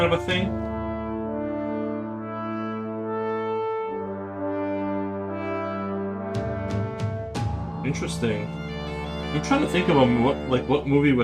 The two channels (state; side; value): identical; both; correlation 1.00